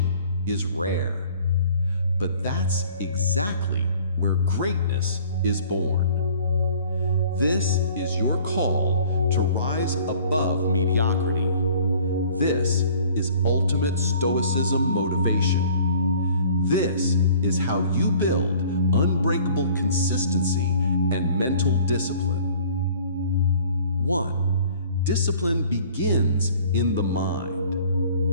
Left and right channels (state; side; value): inverted; both; correlation -0.51